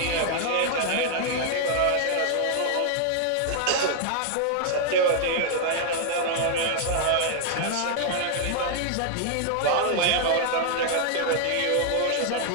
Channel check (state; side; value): different; both; correlation 0.00